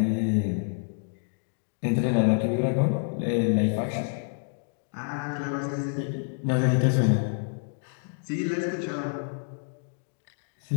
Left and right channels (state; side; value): silent; right; digital silence